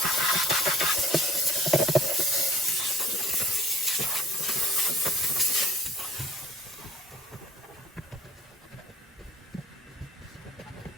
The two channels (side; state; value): both; normal; correlation 0.53